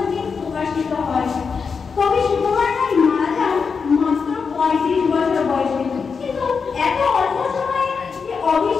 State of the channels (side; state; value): right; quieter; 5.5 dB